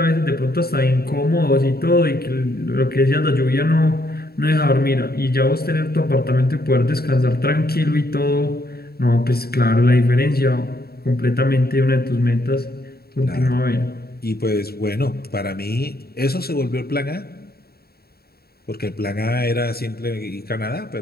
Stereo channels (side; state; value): right; late; 0.45 ms